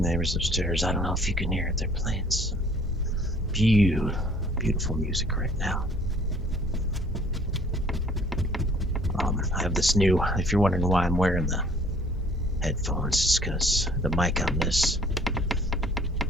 upstairs, I don't know if you can hear it, they're playing some beautiful music right now. I have this new, if you're wondering why I'm wearing the headphones, it's because the mic on this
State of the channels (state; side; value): normal; both; correlation 0.56